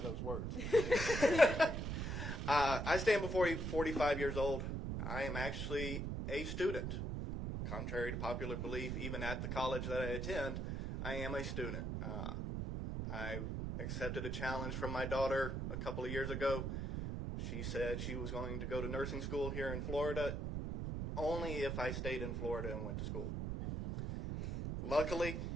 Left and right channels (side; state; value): right; noise; rumble, 2 dB below the sound